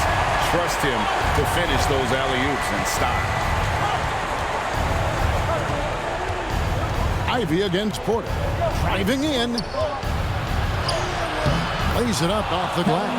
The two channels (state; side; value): identical; both; correlation 1.00